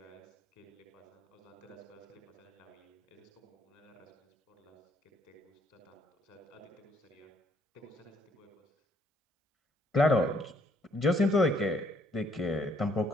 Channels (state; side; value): normal; both; correlation 0.68